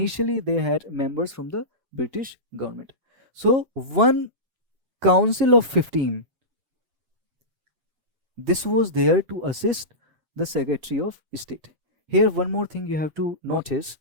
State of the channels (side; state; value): left; late; 7.2 ms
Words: they had members from the British government. So one Council of 15, this was there to assist the Secretary of State. Here one more thing you have to notice,